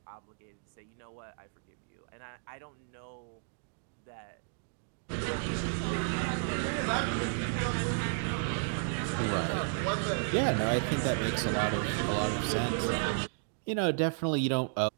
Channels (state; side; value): silent; left; digital silence